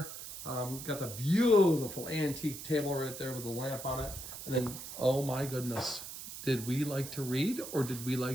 Got the beautiful antique table right there with the lamp on it. And then, oh my goodness, did we like to read or did we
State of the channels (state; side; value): noise; right; hiss, 10 dB below the sound